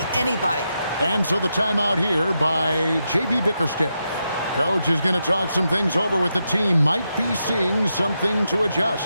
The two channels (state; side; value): inverted; both; correlation -0.85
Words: anybody. And so the timeout here by J.B. Bickerstaff. Coach is going to talk some things over with the team. Might be seeing something to